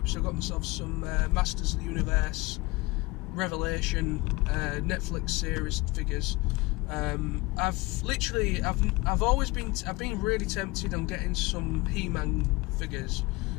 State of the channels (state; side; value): quieter; right; 23.0 dB